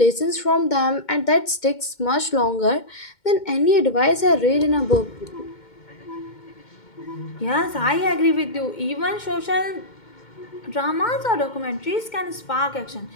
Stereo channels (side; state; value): right; late; 2.2 ms